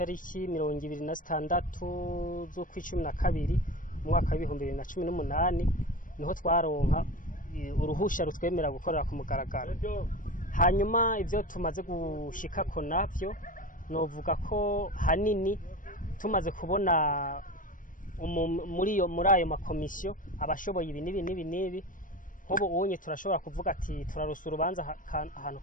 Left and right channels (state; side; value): late; right; 0.38 ms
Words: 26 z'ukwicumi mu mwaka wa 2018, niho twaronka uruhusha rutwemera gukorera ku mugaragaro. Hanyuma ivyo tumaze gushikako navyo novuga ko hanini tumaze kubona muri ayo makomisiyo abashoboye ibi nibi. Nkubu ubonye turashobora kuvuga ati turarusa urubanza ahantu